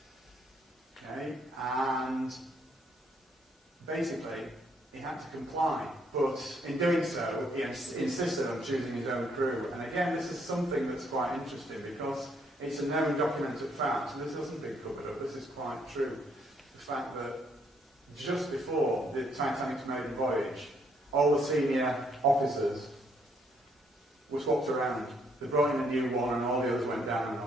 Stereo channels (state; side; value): normal; both; correlation 0.70